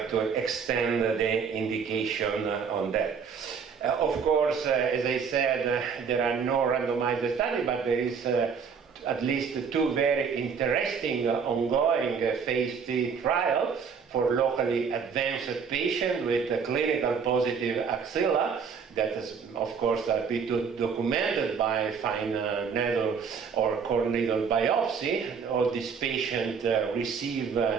to extend the indication on that. Of course, as I said, there are no randomized studies, but there is at least two very interesting ongoing phase 3 trials for locally advanced patients with a clinical positive axilla that is, of course, been documented by fine needle or core needle biopsy. All these patients receive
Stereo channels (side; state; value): left; quieter; 6.2 dB